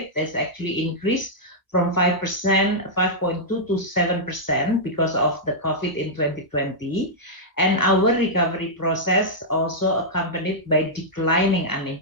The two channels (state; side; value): late; right; 1.0 ms